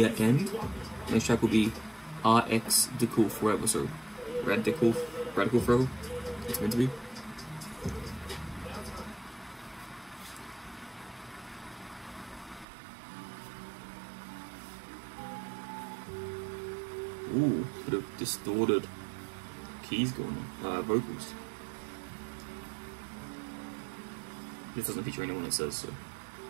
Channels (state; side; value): drops out; left; at 12.7 s